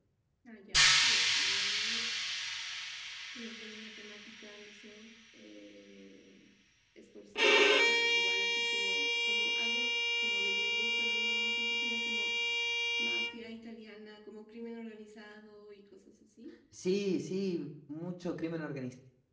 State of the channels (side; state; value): both; identical; correlation 1.00